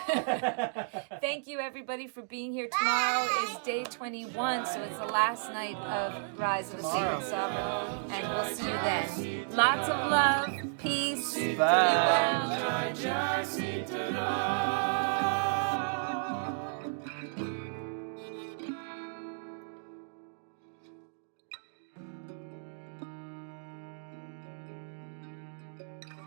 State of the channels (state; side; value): silent; left; digital silence